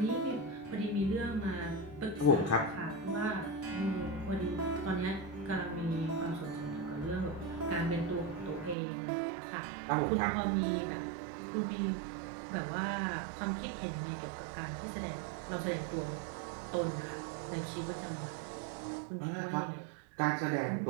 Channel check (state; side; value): drops out; left; at 8.8 s